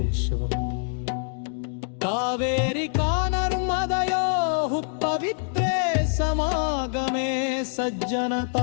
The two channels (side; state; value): right; silent; digital silence